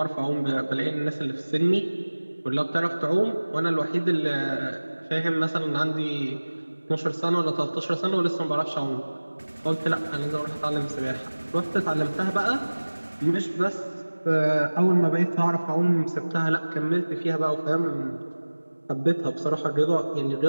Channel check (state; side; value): inverted; both; correlation -1.00